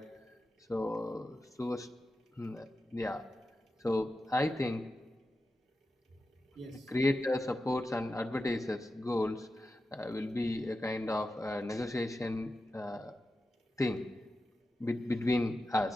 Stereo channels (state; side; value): normal; both; correlation 0.91